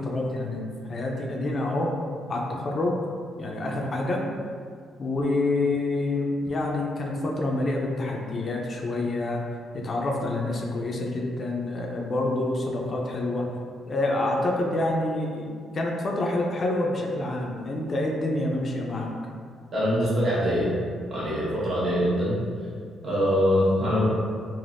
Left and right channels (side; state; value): both; normal; correlation 0.77